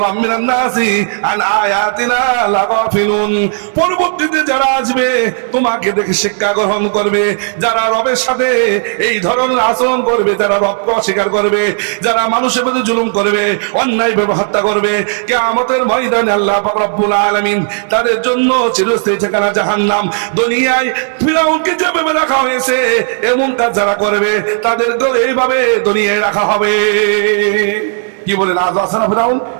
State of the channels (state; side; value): silent; left; 56 dB below the other